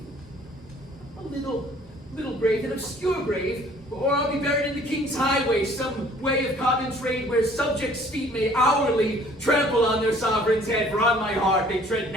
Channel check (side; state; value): both; normal; correlation 0.56